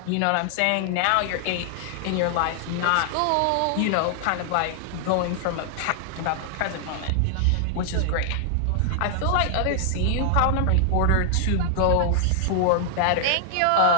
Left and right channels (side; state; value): both; different; correlation 0.00